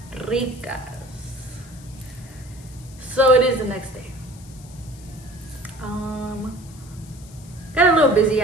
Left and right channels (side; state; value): left; noise; hiss, 22 dB below the sound